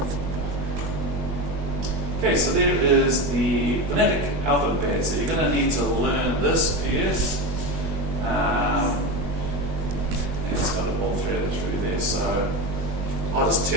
Okay, so there is the phonetic alphabet. So you're going to need to learn this piece. It's got it all threaded through there. So I'll just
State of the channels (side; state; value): left; late; 20 ms